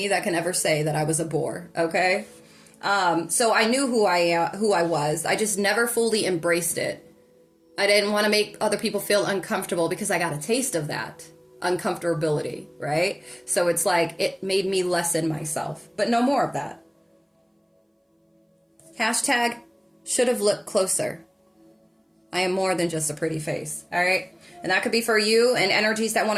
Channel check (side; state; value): both; identical; correlation 1.00